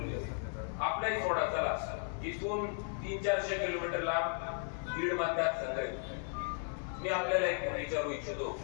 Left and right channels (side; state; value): right; silent; 54 dB below the other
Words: आपलाही सोडा, चला इथून 300-400 किलोमीटर लांब बीड मतदारसंघ आहे. मी आपल्याला एक विचारू इच्छितो,